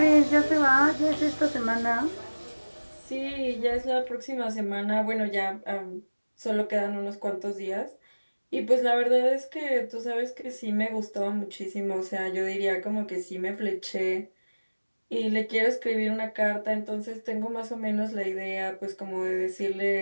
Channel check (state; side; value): inverted; both; correlation -1.00